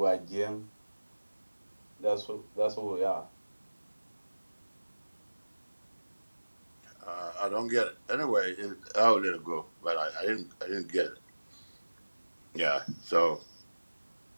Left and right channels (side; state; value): both; inverted; correlation -1.00